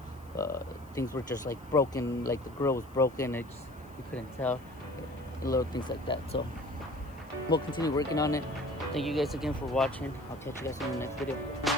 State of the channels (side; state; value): left; noise; hiss, 28 dB below the sound